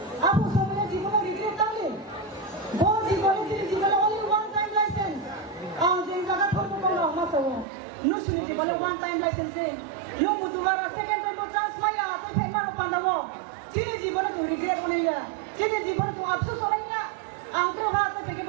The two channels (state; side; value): drops out; left; at 7.7 s